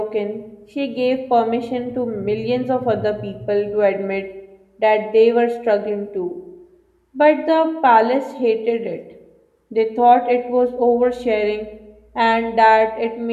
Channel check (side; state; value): both; identical; correlation 1.00